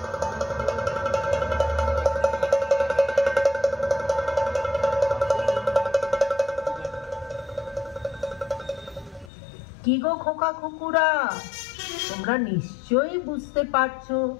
কি গো খোকা কুকুরা, তোমরা নিশ্চয়ই বুঝতে পারছো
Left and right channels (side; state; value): right; drops out; at 9.3 s